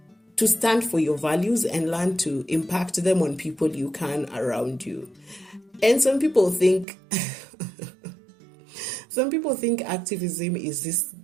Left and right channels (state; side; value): drops out; left; at 6.9 s